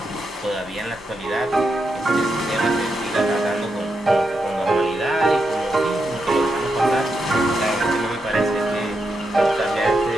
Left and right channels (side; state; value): both; normal; correlation 0.84